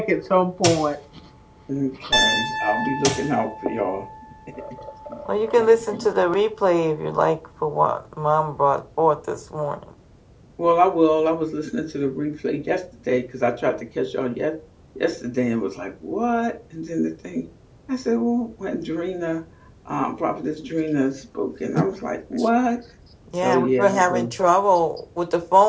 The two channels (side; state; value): both; identical; correlation 1.00